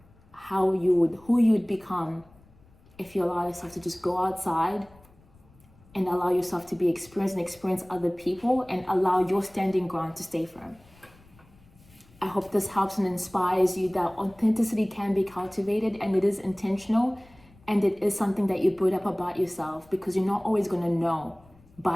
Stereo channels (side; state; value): left; noise; rumble, 27 dB below the sound